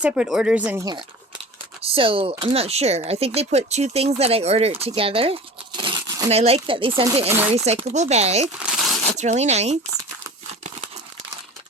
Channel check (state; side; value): normal; both; correlation 0.37